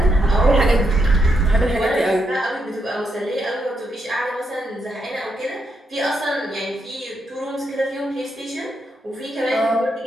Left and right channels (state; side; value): normal; both; correlation 0.80